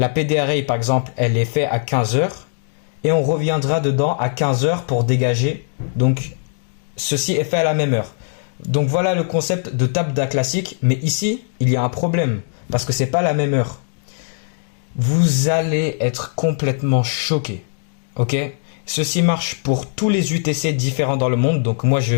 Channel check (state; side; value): silent; right; digital silence